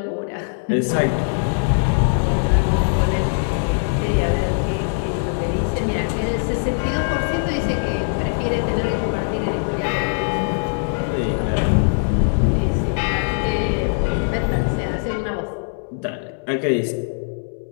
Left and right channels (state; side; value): silent; right; 65 dB below the other